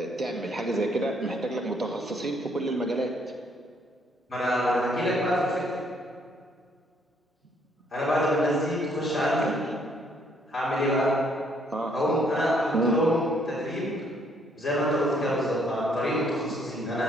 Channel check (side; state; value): both; normal; correlation 0.67